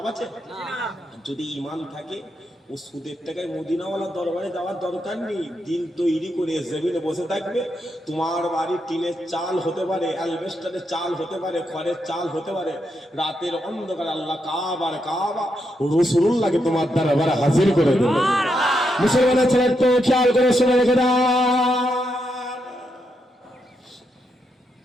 আছে? যদি ইমান থাকে ও সুদের টাকায় মদিনাওয়ালা দরবারে যাওয়ার দরকার নেই। দিল তৈরি করে জমিনে বসে থাকবে। তোমার বাড়ি টিনের চাল হতে পারে, অ্যালবেস্টারের চাল হতে পারে, খড়ের চাল হতে পারে। রাতের অন্ধকার আল্লাহ কাবার কাবা রাসূলুল্লাহকে তোমার দরবারে হাজির করে দেবে। মুসলমানের ছেলে তো খেয়াল করে শুনে রেখে দাও।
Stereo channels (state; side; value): normal; both; correlation 0.82